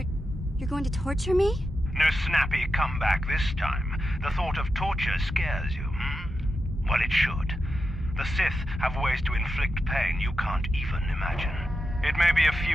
going to torture me? No snappy comeback this time. The thought of torture scares you, hmm? Well, it should. The Sith have ways to inflict pain you can't even imagine. It may be a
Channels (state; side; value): normal; both; correlation 0.89